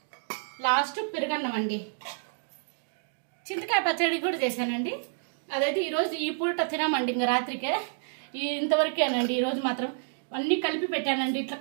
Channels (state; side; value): silent; left; digital silence